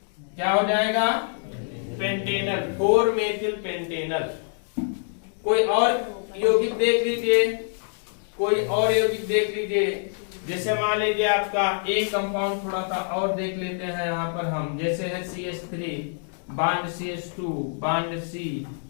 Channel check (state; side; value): silent; right; digital silence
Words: क्या हो जाएगा पेंटेनल, 4 मेथिल पेंटेनल। कोई और यौगिक देख लीजिए, कोई और यौगिक देख लीजिए। जैसे मान लीजिए आपका एक कंपाउंड थोड़ा सा और देख लेते हैं यहाँ पर हम, जैसे है CH3 bond CH2 bond C